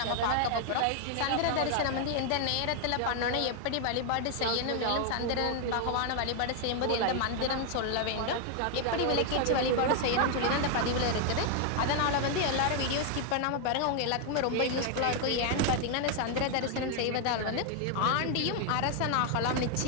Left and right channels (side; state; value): both; different; correlation 0.00